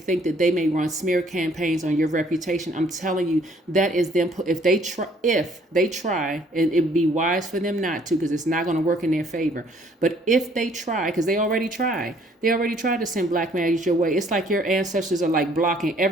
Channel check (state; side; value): normal; both; correlation 0.61